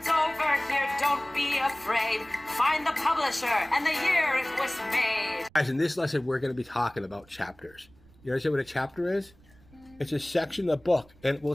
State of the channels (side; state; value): right; noise; rumble, 27 dB below the sound